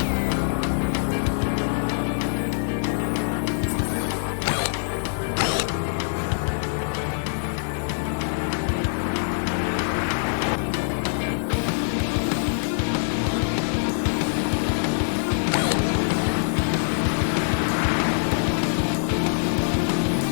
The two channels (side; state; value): right; silent; digital silence